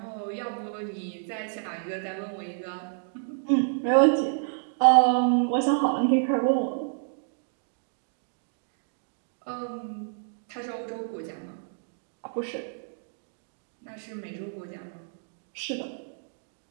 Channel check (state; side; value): silent; left; digital silence